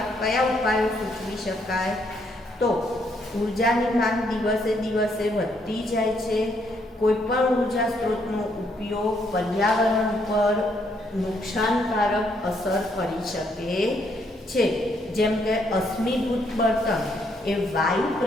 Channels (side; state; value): both; normal; correlation 0.72